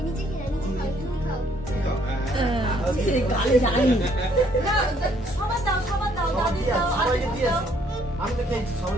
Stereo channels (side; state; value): both; normal; correlation 0.66